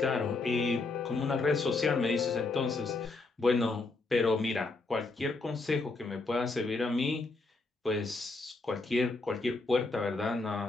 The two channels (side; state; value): right; quieter; 3.5 dB